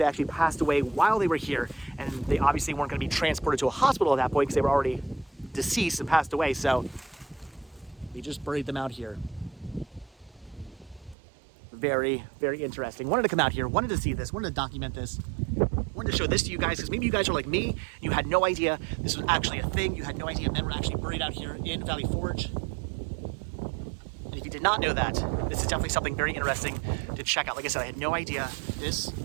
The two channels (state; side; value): drops out; left; at 11.2 s